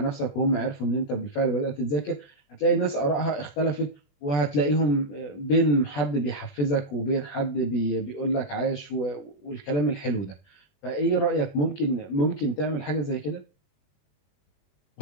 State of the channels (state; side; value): late; right; 21 ms